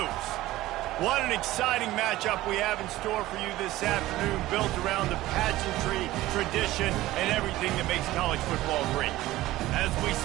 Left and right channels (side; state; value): left; quieter; 16.6 dB